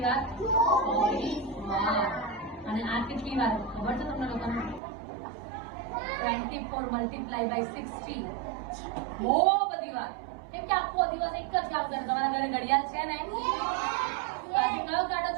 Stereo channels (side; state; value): left; drops out; at 4.8 s